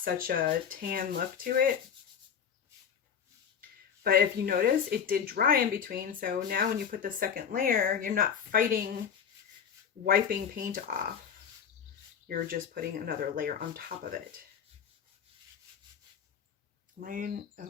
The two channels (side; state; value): right; quieter; 7.6 dB